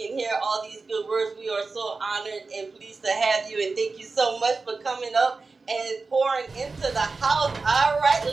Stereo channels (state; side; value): quieter; left; 4.0 dB